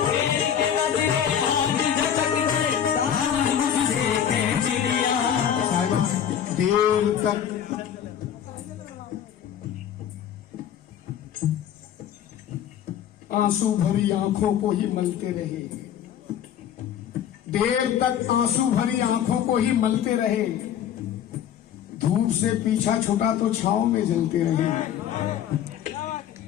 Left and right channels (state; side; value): quieter; right; 9.5 dB